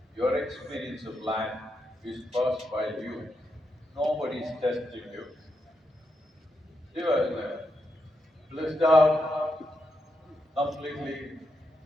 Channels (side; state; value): both; normal; correlation 0.83